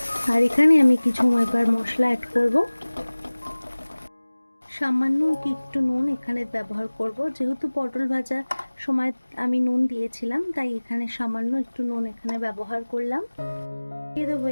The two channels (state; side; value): inverted; both; correlation -1.00